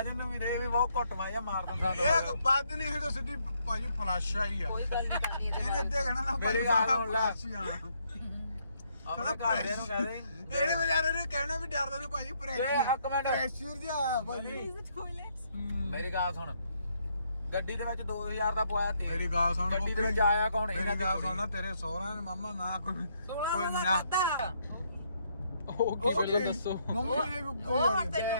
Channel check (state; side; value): inverted; both; correlation -0.73